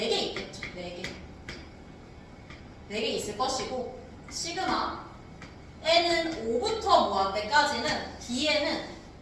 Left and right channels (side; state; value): both; identical; correlation 1.00